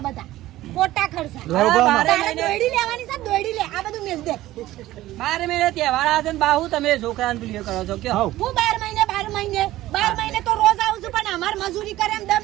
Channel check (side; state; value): left; quieter; 15.7 dB